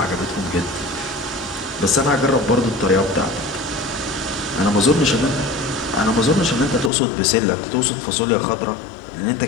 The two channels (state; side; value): drops out; right; at 6.9 s